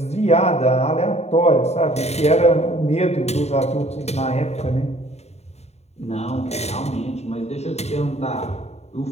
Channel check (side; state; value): right; late; 0.31 ms